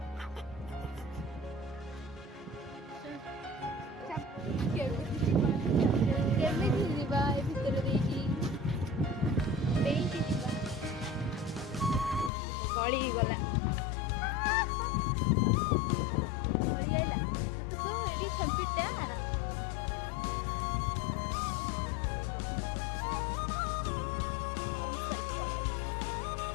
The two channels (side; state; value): right; drops out; at 12.3 s